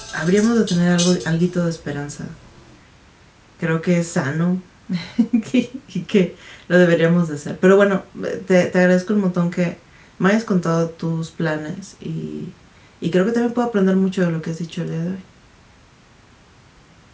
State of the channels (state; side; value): identical; both; correlation 1.00